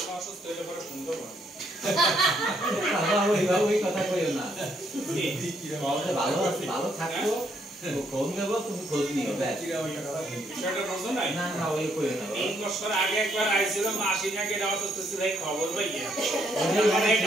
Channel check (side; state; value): both; normal; correlation 0.72